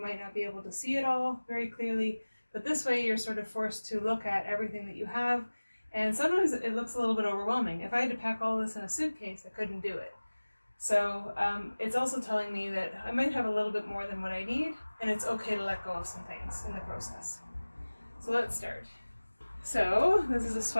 not be able to see it all very clearly, but this way you're sort of forced to look at everything that you have, and sometimes it looks a little bit overwhelming. If I had to pack all this in a suitcase, I couldn't do it. So it's also telling me that I might have a little bit more than what I need, and it's okay to let go of some things in the process. So let's start. So this is a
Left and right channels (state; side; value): inverted; both; correlation -1.00